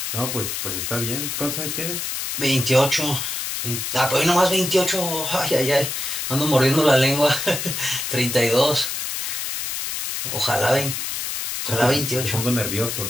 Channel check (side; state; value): left; noise; hiss, 3 dB below the sound